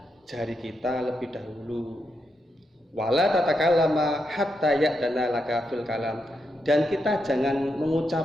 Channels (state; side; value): normal; both; correlation 0.83